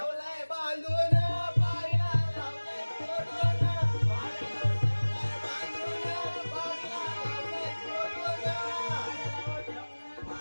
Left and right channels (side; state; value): both; inverted; correlation -1.00